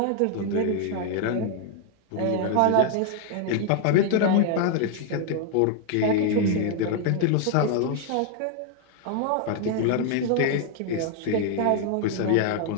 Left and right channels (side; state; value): both; different; correlation 0.00